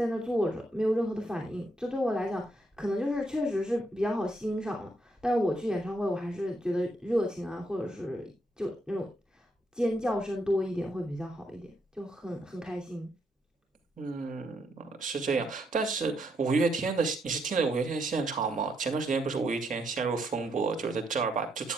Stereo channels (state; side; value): normal; both; correlation 0.77